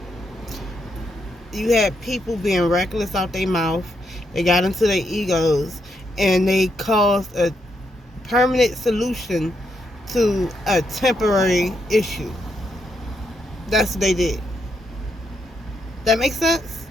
You had people being reckless out their mouth. They got into their egos. And they caused a permanent solution to a temporary issue. That's what they did. That makes sense?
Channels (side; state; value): both; normal; correlation 0.79